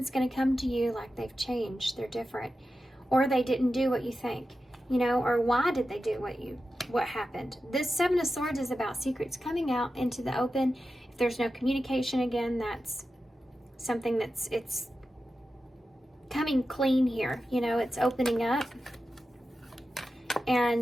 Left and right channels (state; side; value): normal; both; correlation 0.92